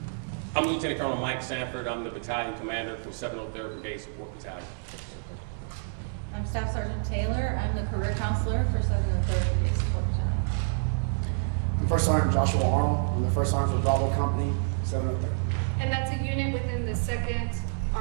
I'm Lieutenant Colonel Mike Sanford. I'm the battalion commander for 703rd Brigade Support Battalion. I'm Staff Sergeant Taylor. I'm the career counselor for 703rd Brigade Support Battalion. I'm First Sergeant Joshua Arnold. I'm the First Sergeant for Bravo Company, 703rd. And that's a unit within the 2nd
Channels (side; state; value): left; silent; 59 dB below the other